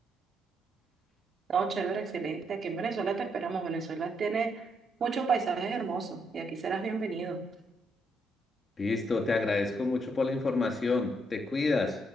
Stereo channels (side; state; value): both; normal; correlation 0.76